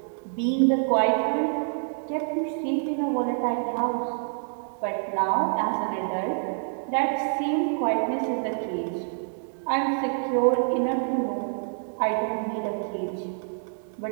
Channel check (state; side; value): silent; left; digital silence